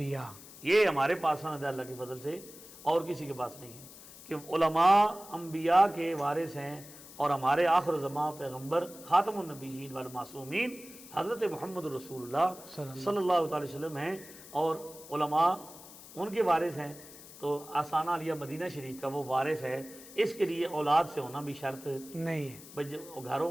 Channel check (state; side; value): noise; left; hiss, 17 dB below the sound